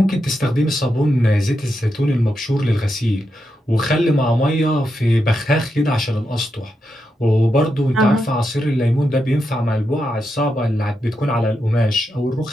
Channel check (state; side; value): normal; both; correlation 0.85